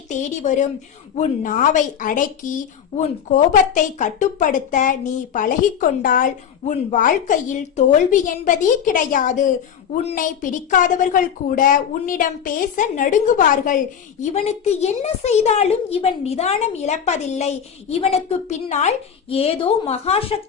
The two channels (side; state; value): right; quieter; 8.2 dB